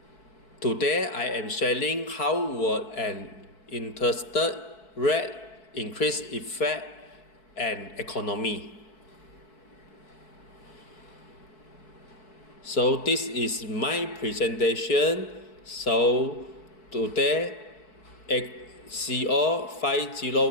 Today, I am sharing how will an interest rate increase effect an economy. So this is my presentation. So today, CO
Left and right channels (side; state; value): right; late; 4.6 ms